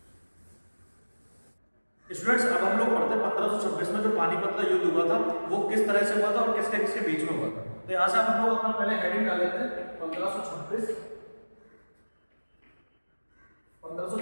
स्टूडेंट्स अब हम लोग पढ़ते हैं 1526 में जो पानीपत का युद्ध हुआ था वो किस तरह से हुआ था और किसके किसके बीच में हुआ था। तो यहां से हम लोग अपना पहले हेडिंग डाल लेते हैं 1526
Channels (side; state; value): both; inverted; correlation -1.00